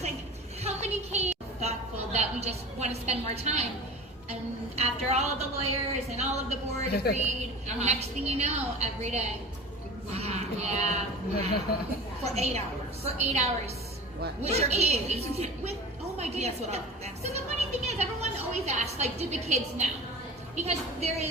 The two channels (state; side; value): normal; both; correlation 0.37